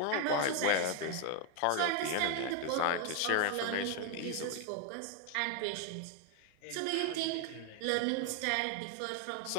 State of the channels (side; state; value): both; different; correlation 0.00